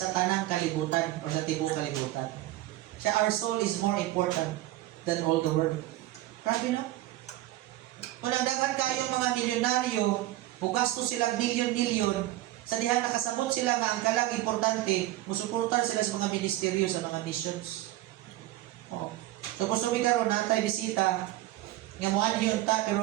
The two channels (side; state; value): left; quieter; 15.8 dB